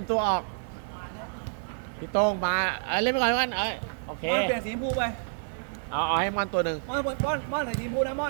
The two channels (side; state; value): left; silent; digital silence